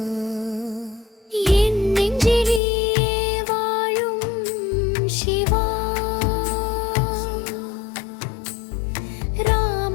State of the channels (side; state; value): right; drops out; at 2.6 s